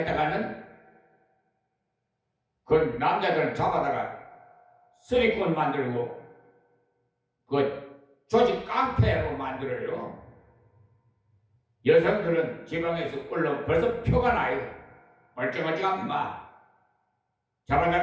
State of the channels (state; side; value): identical; both; correlation 1.00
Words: 그 남자들을 잡아다가 쓰리꾼 만들고 그 조직 깡패로 만들어요. 여성들은 지방에서 올라오면 벌써 표가 나요. 얼쩡얼쩡한